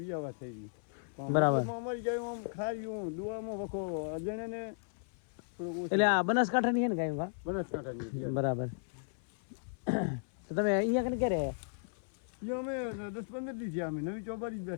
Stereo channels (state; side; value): silent; right; 54 dB below the other